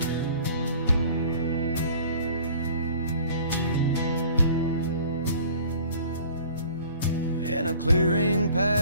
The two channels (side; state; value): both; inverted; correlation -0.49